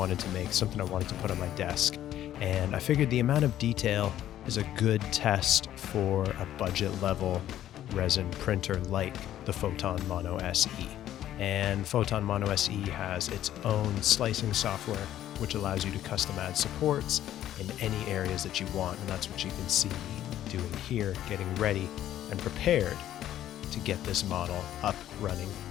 to make, something I wanted to put on my desk. And I figured the amount of detail is a good test for a budget level resin printer like the Photon Mono SE. And Photon Mono SE has its own slicing software, which allows you to custom add supports in any areas that you want. And that's what you can see me doing here, getting ready and prepared to get this model up, running,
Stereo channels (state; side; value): quieter; right; 12.2 dB